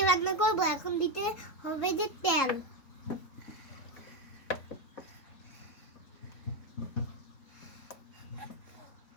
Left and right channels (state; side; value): late; right; 3.8 ms